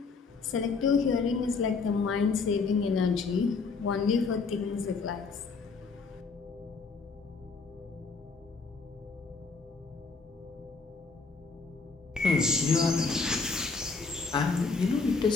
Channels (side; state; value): right; quieter; 4.5 dB